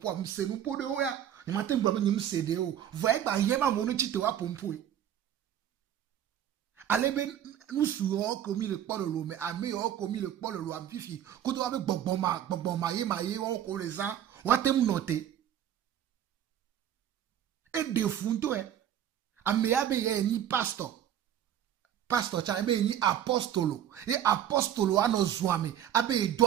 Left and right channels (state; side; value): quieter; left; 10.5 dB